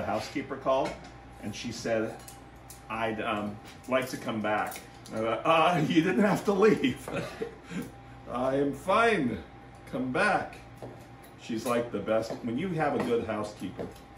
housekeeper call. And she said, I'd like to come back. And I thought, you didn't have to leave. I am fine. Come back. She's like the best. When you have a good housekeeper,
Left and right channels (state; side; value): identical; both; correlation 1.00